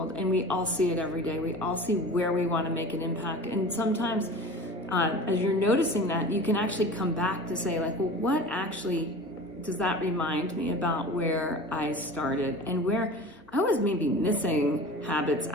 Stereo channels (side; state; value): both; normal; correlation 0.37